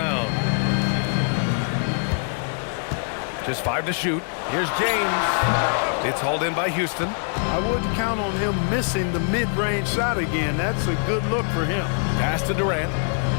Just 5 to shoot. Here's James. It's hauled in by Houston. I wouldn't count on him missing the mid-range shot again. That's a good look for him. Pass to Durant.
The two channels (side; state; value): right; silent; 63 dB below the other